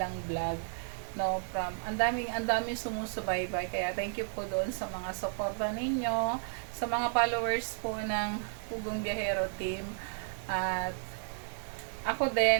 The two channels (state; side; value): silent; left; digital silence